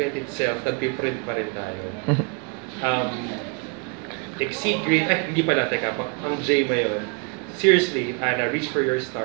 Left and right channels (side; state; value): left; quieter; 36.0 dB